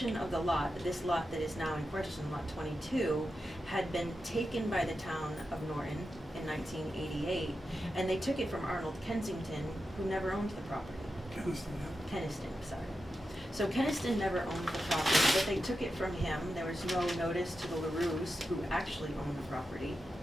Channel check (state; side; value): normal; both; correlation 0.89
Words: of the lot, this lot that is now in question, lot 22, had been taken by the town of Norton in 1988, and they took it from Arnold Kensington, who never owned the property. Keniston, yeah. Keniston, sorry. So Keniston never owned the property, but they took it from him. There was no notice to the LaRues, who actually owned the property.